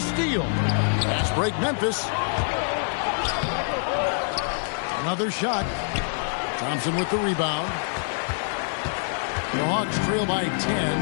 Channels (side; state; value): right; silent; digital silence